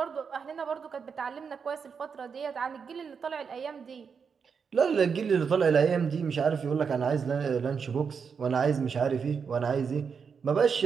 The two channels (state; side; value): quieter; left; 6.2 dB